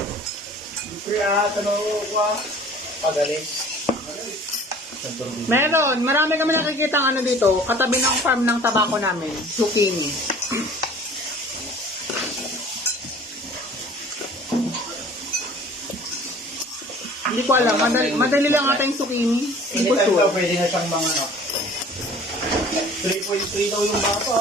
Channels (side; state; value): both; normal; correlation 0.48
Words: Kaya, tanong ko, pagalis. Meron, marami kami nakikita ano dito, katabi ng farm ng tabako namin, zucchini. Hindi ko alam, madali lang ata yung zucchini. Hindi ko Anytime sure. daw, pwede na siyang mga ano. 3.3 daw yung